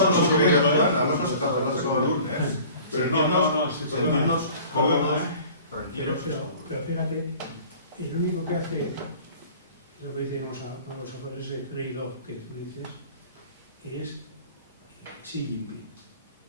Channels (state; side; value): inverted; both; correlation -0.46